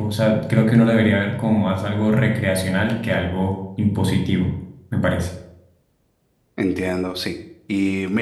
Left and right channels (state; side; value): identical; both; correlation 1.00